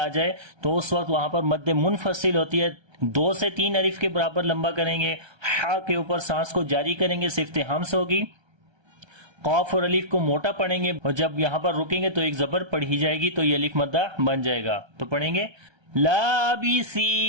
جائے تو اس وقت وہاں پر مد منفصل ہوتی ہے، 2 سے 3 الف کے برابر لمبا کریں گے، ہا کے اوپر سانس کو جاری کریں گے، صفت ہمس ہوگی، قاف اور الف کو موٹا پڑھیں گے اور جب یہاں پر رکیں گے تو ایک زبر پڑھی جائے گی تو یہ الف مدہ بن جائے گا، تو پڑھیں گے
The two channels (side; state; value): left; late; 1.3 ms